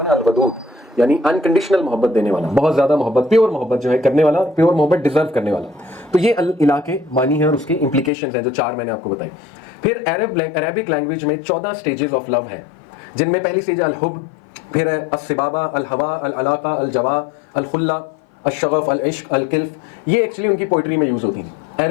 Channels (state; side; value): drops out; right; at 8.1 s